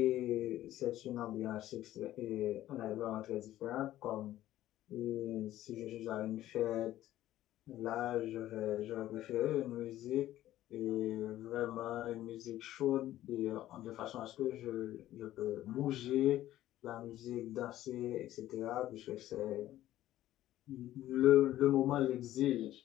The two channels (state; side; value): quieter; right; 14.0 dB